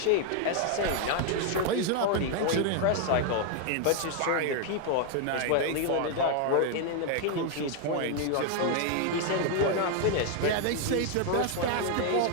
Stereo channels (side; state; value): both; different; correlation 0.00